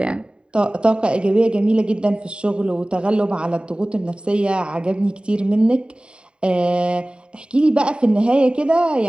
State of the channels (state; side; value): late; left; 0.052 ms